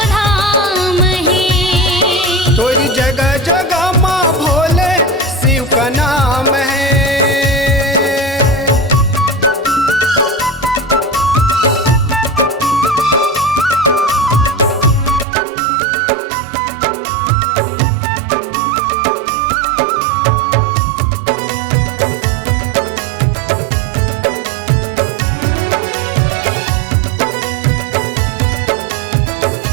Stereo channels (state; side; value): drops out; left; at 15.2 s